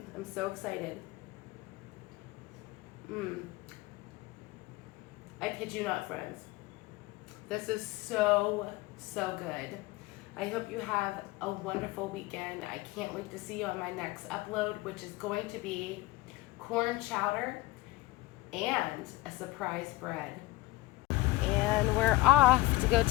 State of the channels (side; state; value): right; quieter; 19.1 dB